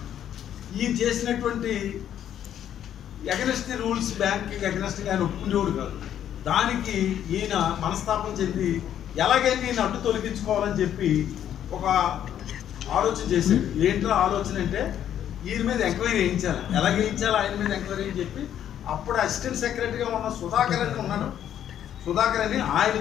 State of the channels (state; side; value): quieter; right; 10.3 dB